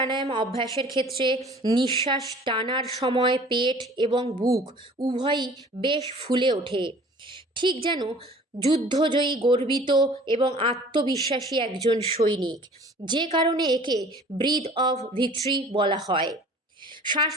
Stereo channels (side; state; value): both; normal; correlation 0.48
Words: অভ্যাসের ক্ষেত্রে নিঃশ্বাস টানার সময় পেট এবং বুক উভয়ই বেশ ফুলে ওঠে, ঠিক যেন যুদ্ধজয়ী, গর্বিত এবং আত্মবিশ্বাসী একজন সৈনিক, যে কারণে একে ব্রিথ অফ ভিক্টরি বলা হয়। শ্বাস